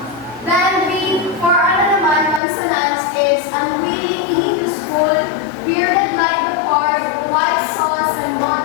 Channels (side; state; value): right; drops out; at 2.4 s